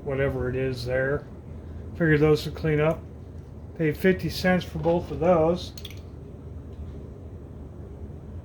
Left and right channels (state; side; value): identical; both; correlation 1.00